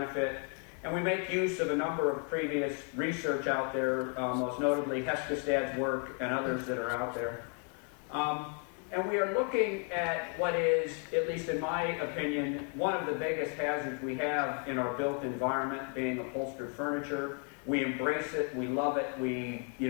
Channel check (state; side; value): quieter; right; 38.9 dB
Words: and we make use of a number of previous research out there, most notably Heskestad's work and others that are out there. And we are looking at what is, at least in my opinion, one of the biggest hazards we have in our built environment, being upholstered furniture. We embrace it, we love it, we